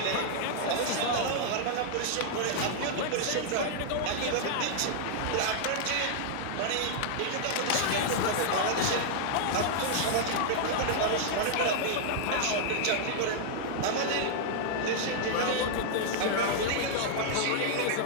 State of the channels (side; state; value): both; different; correlation -0.01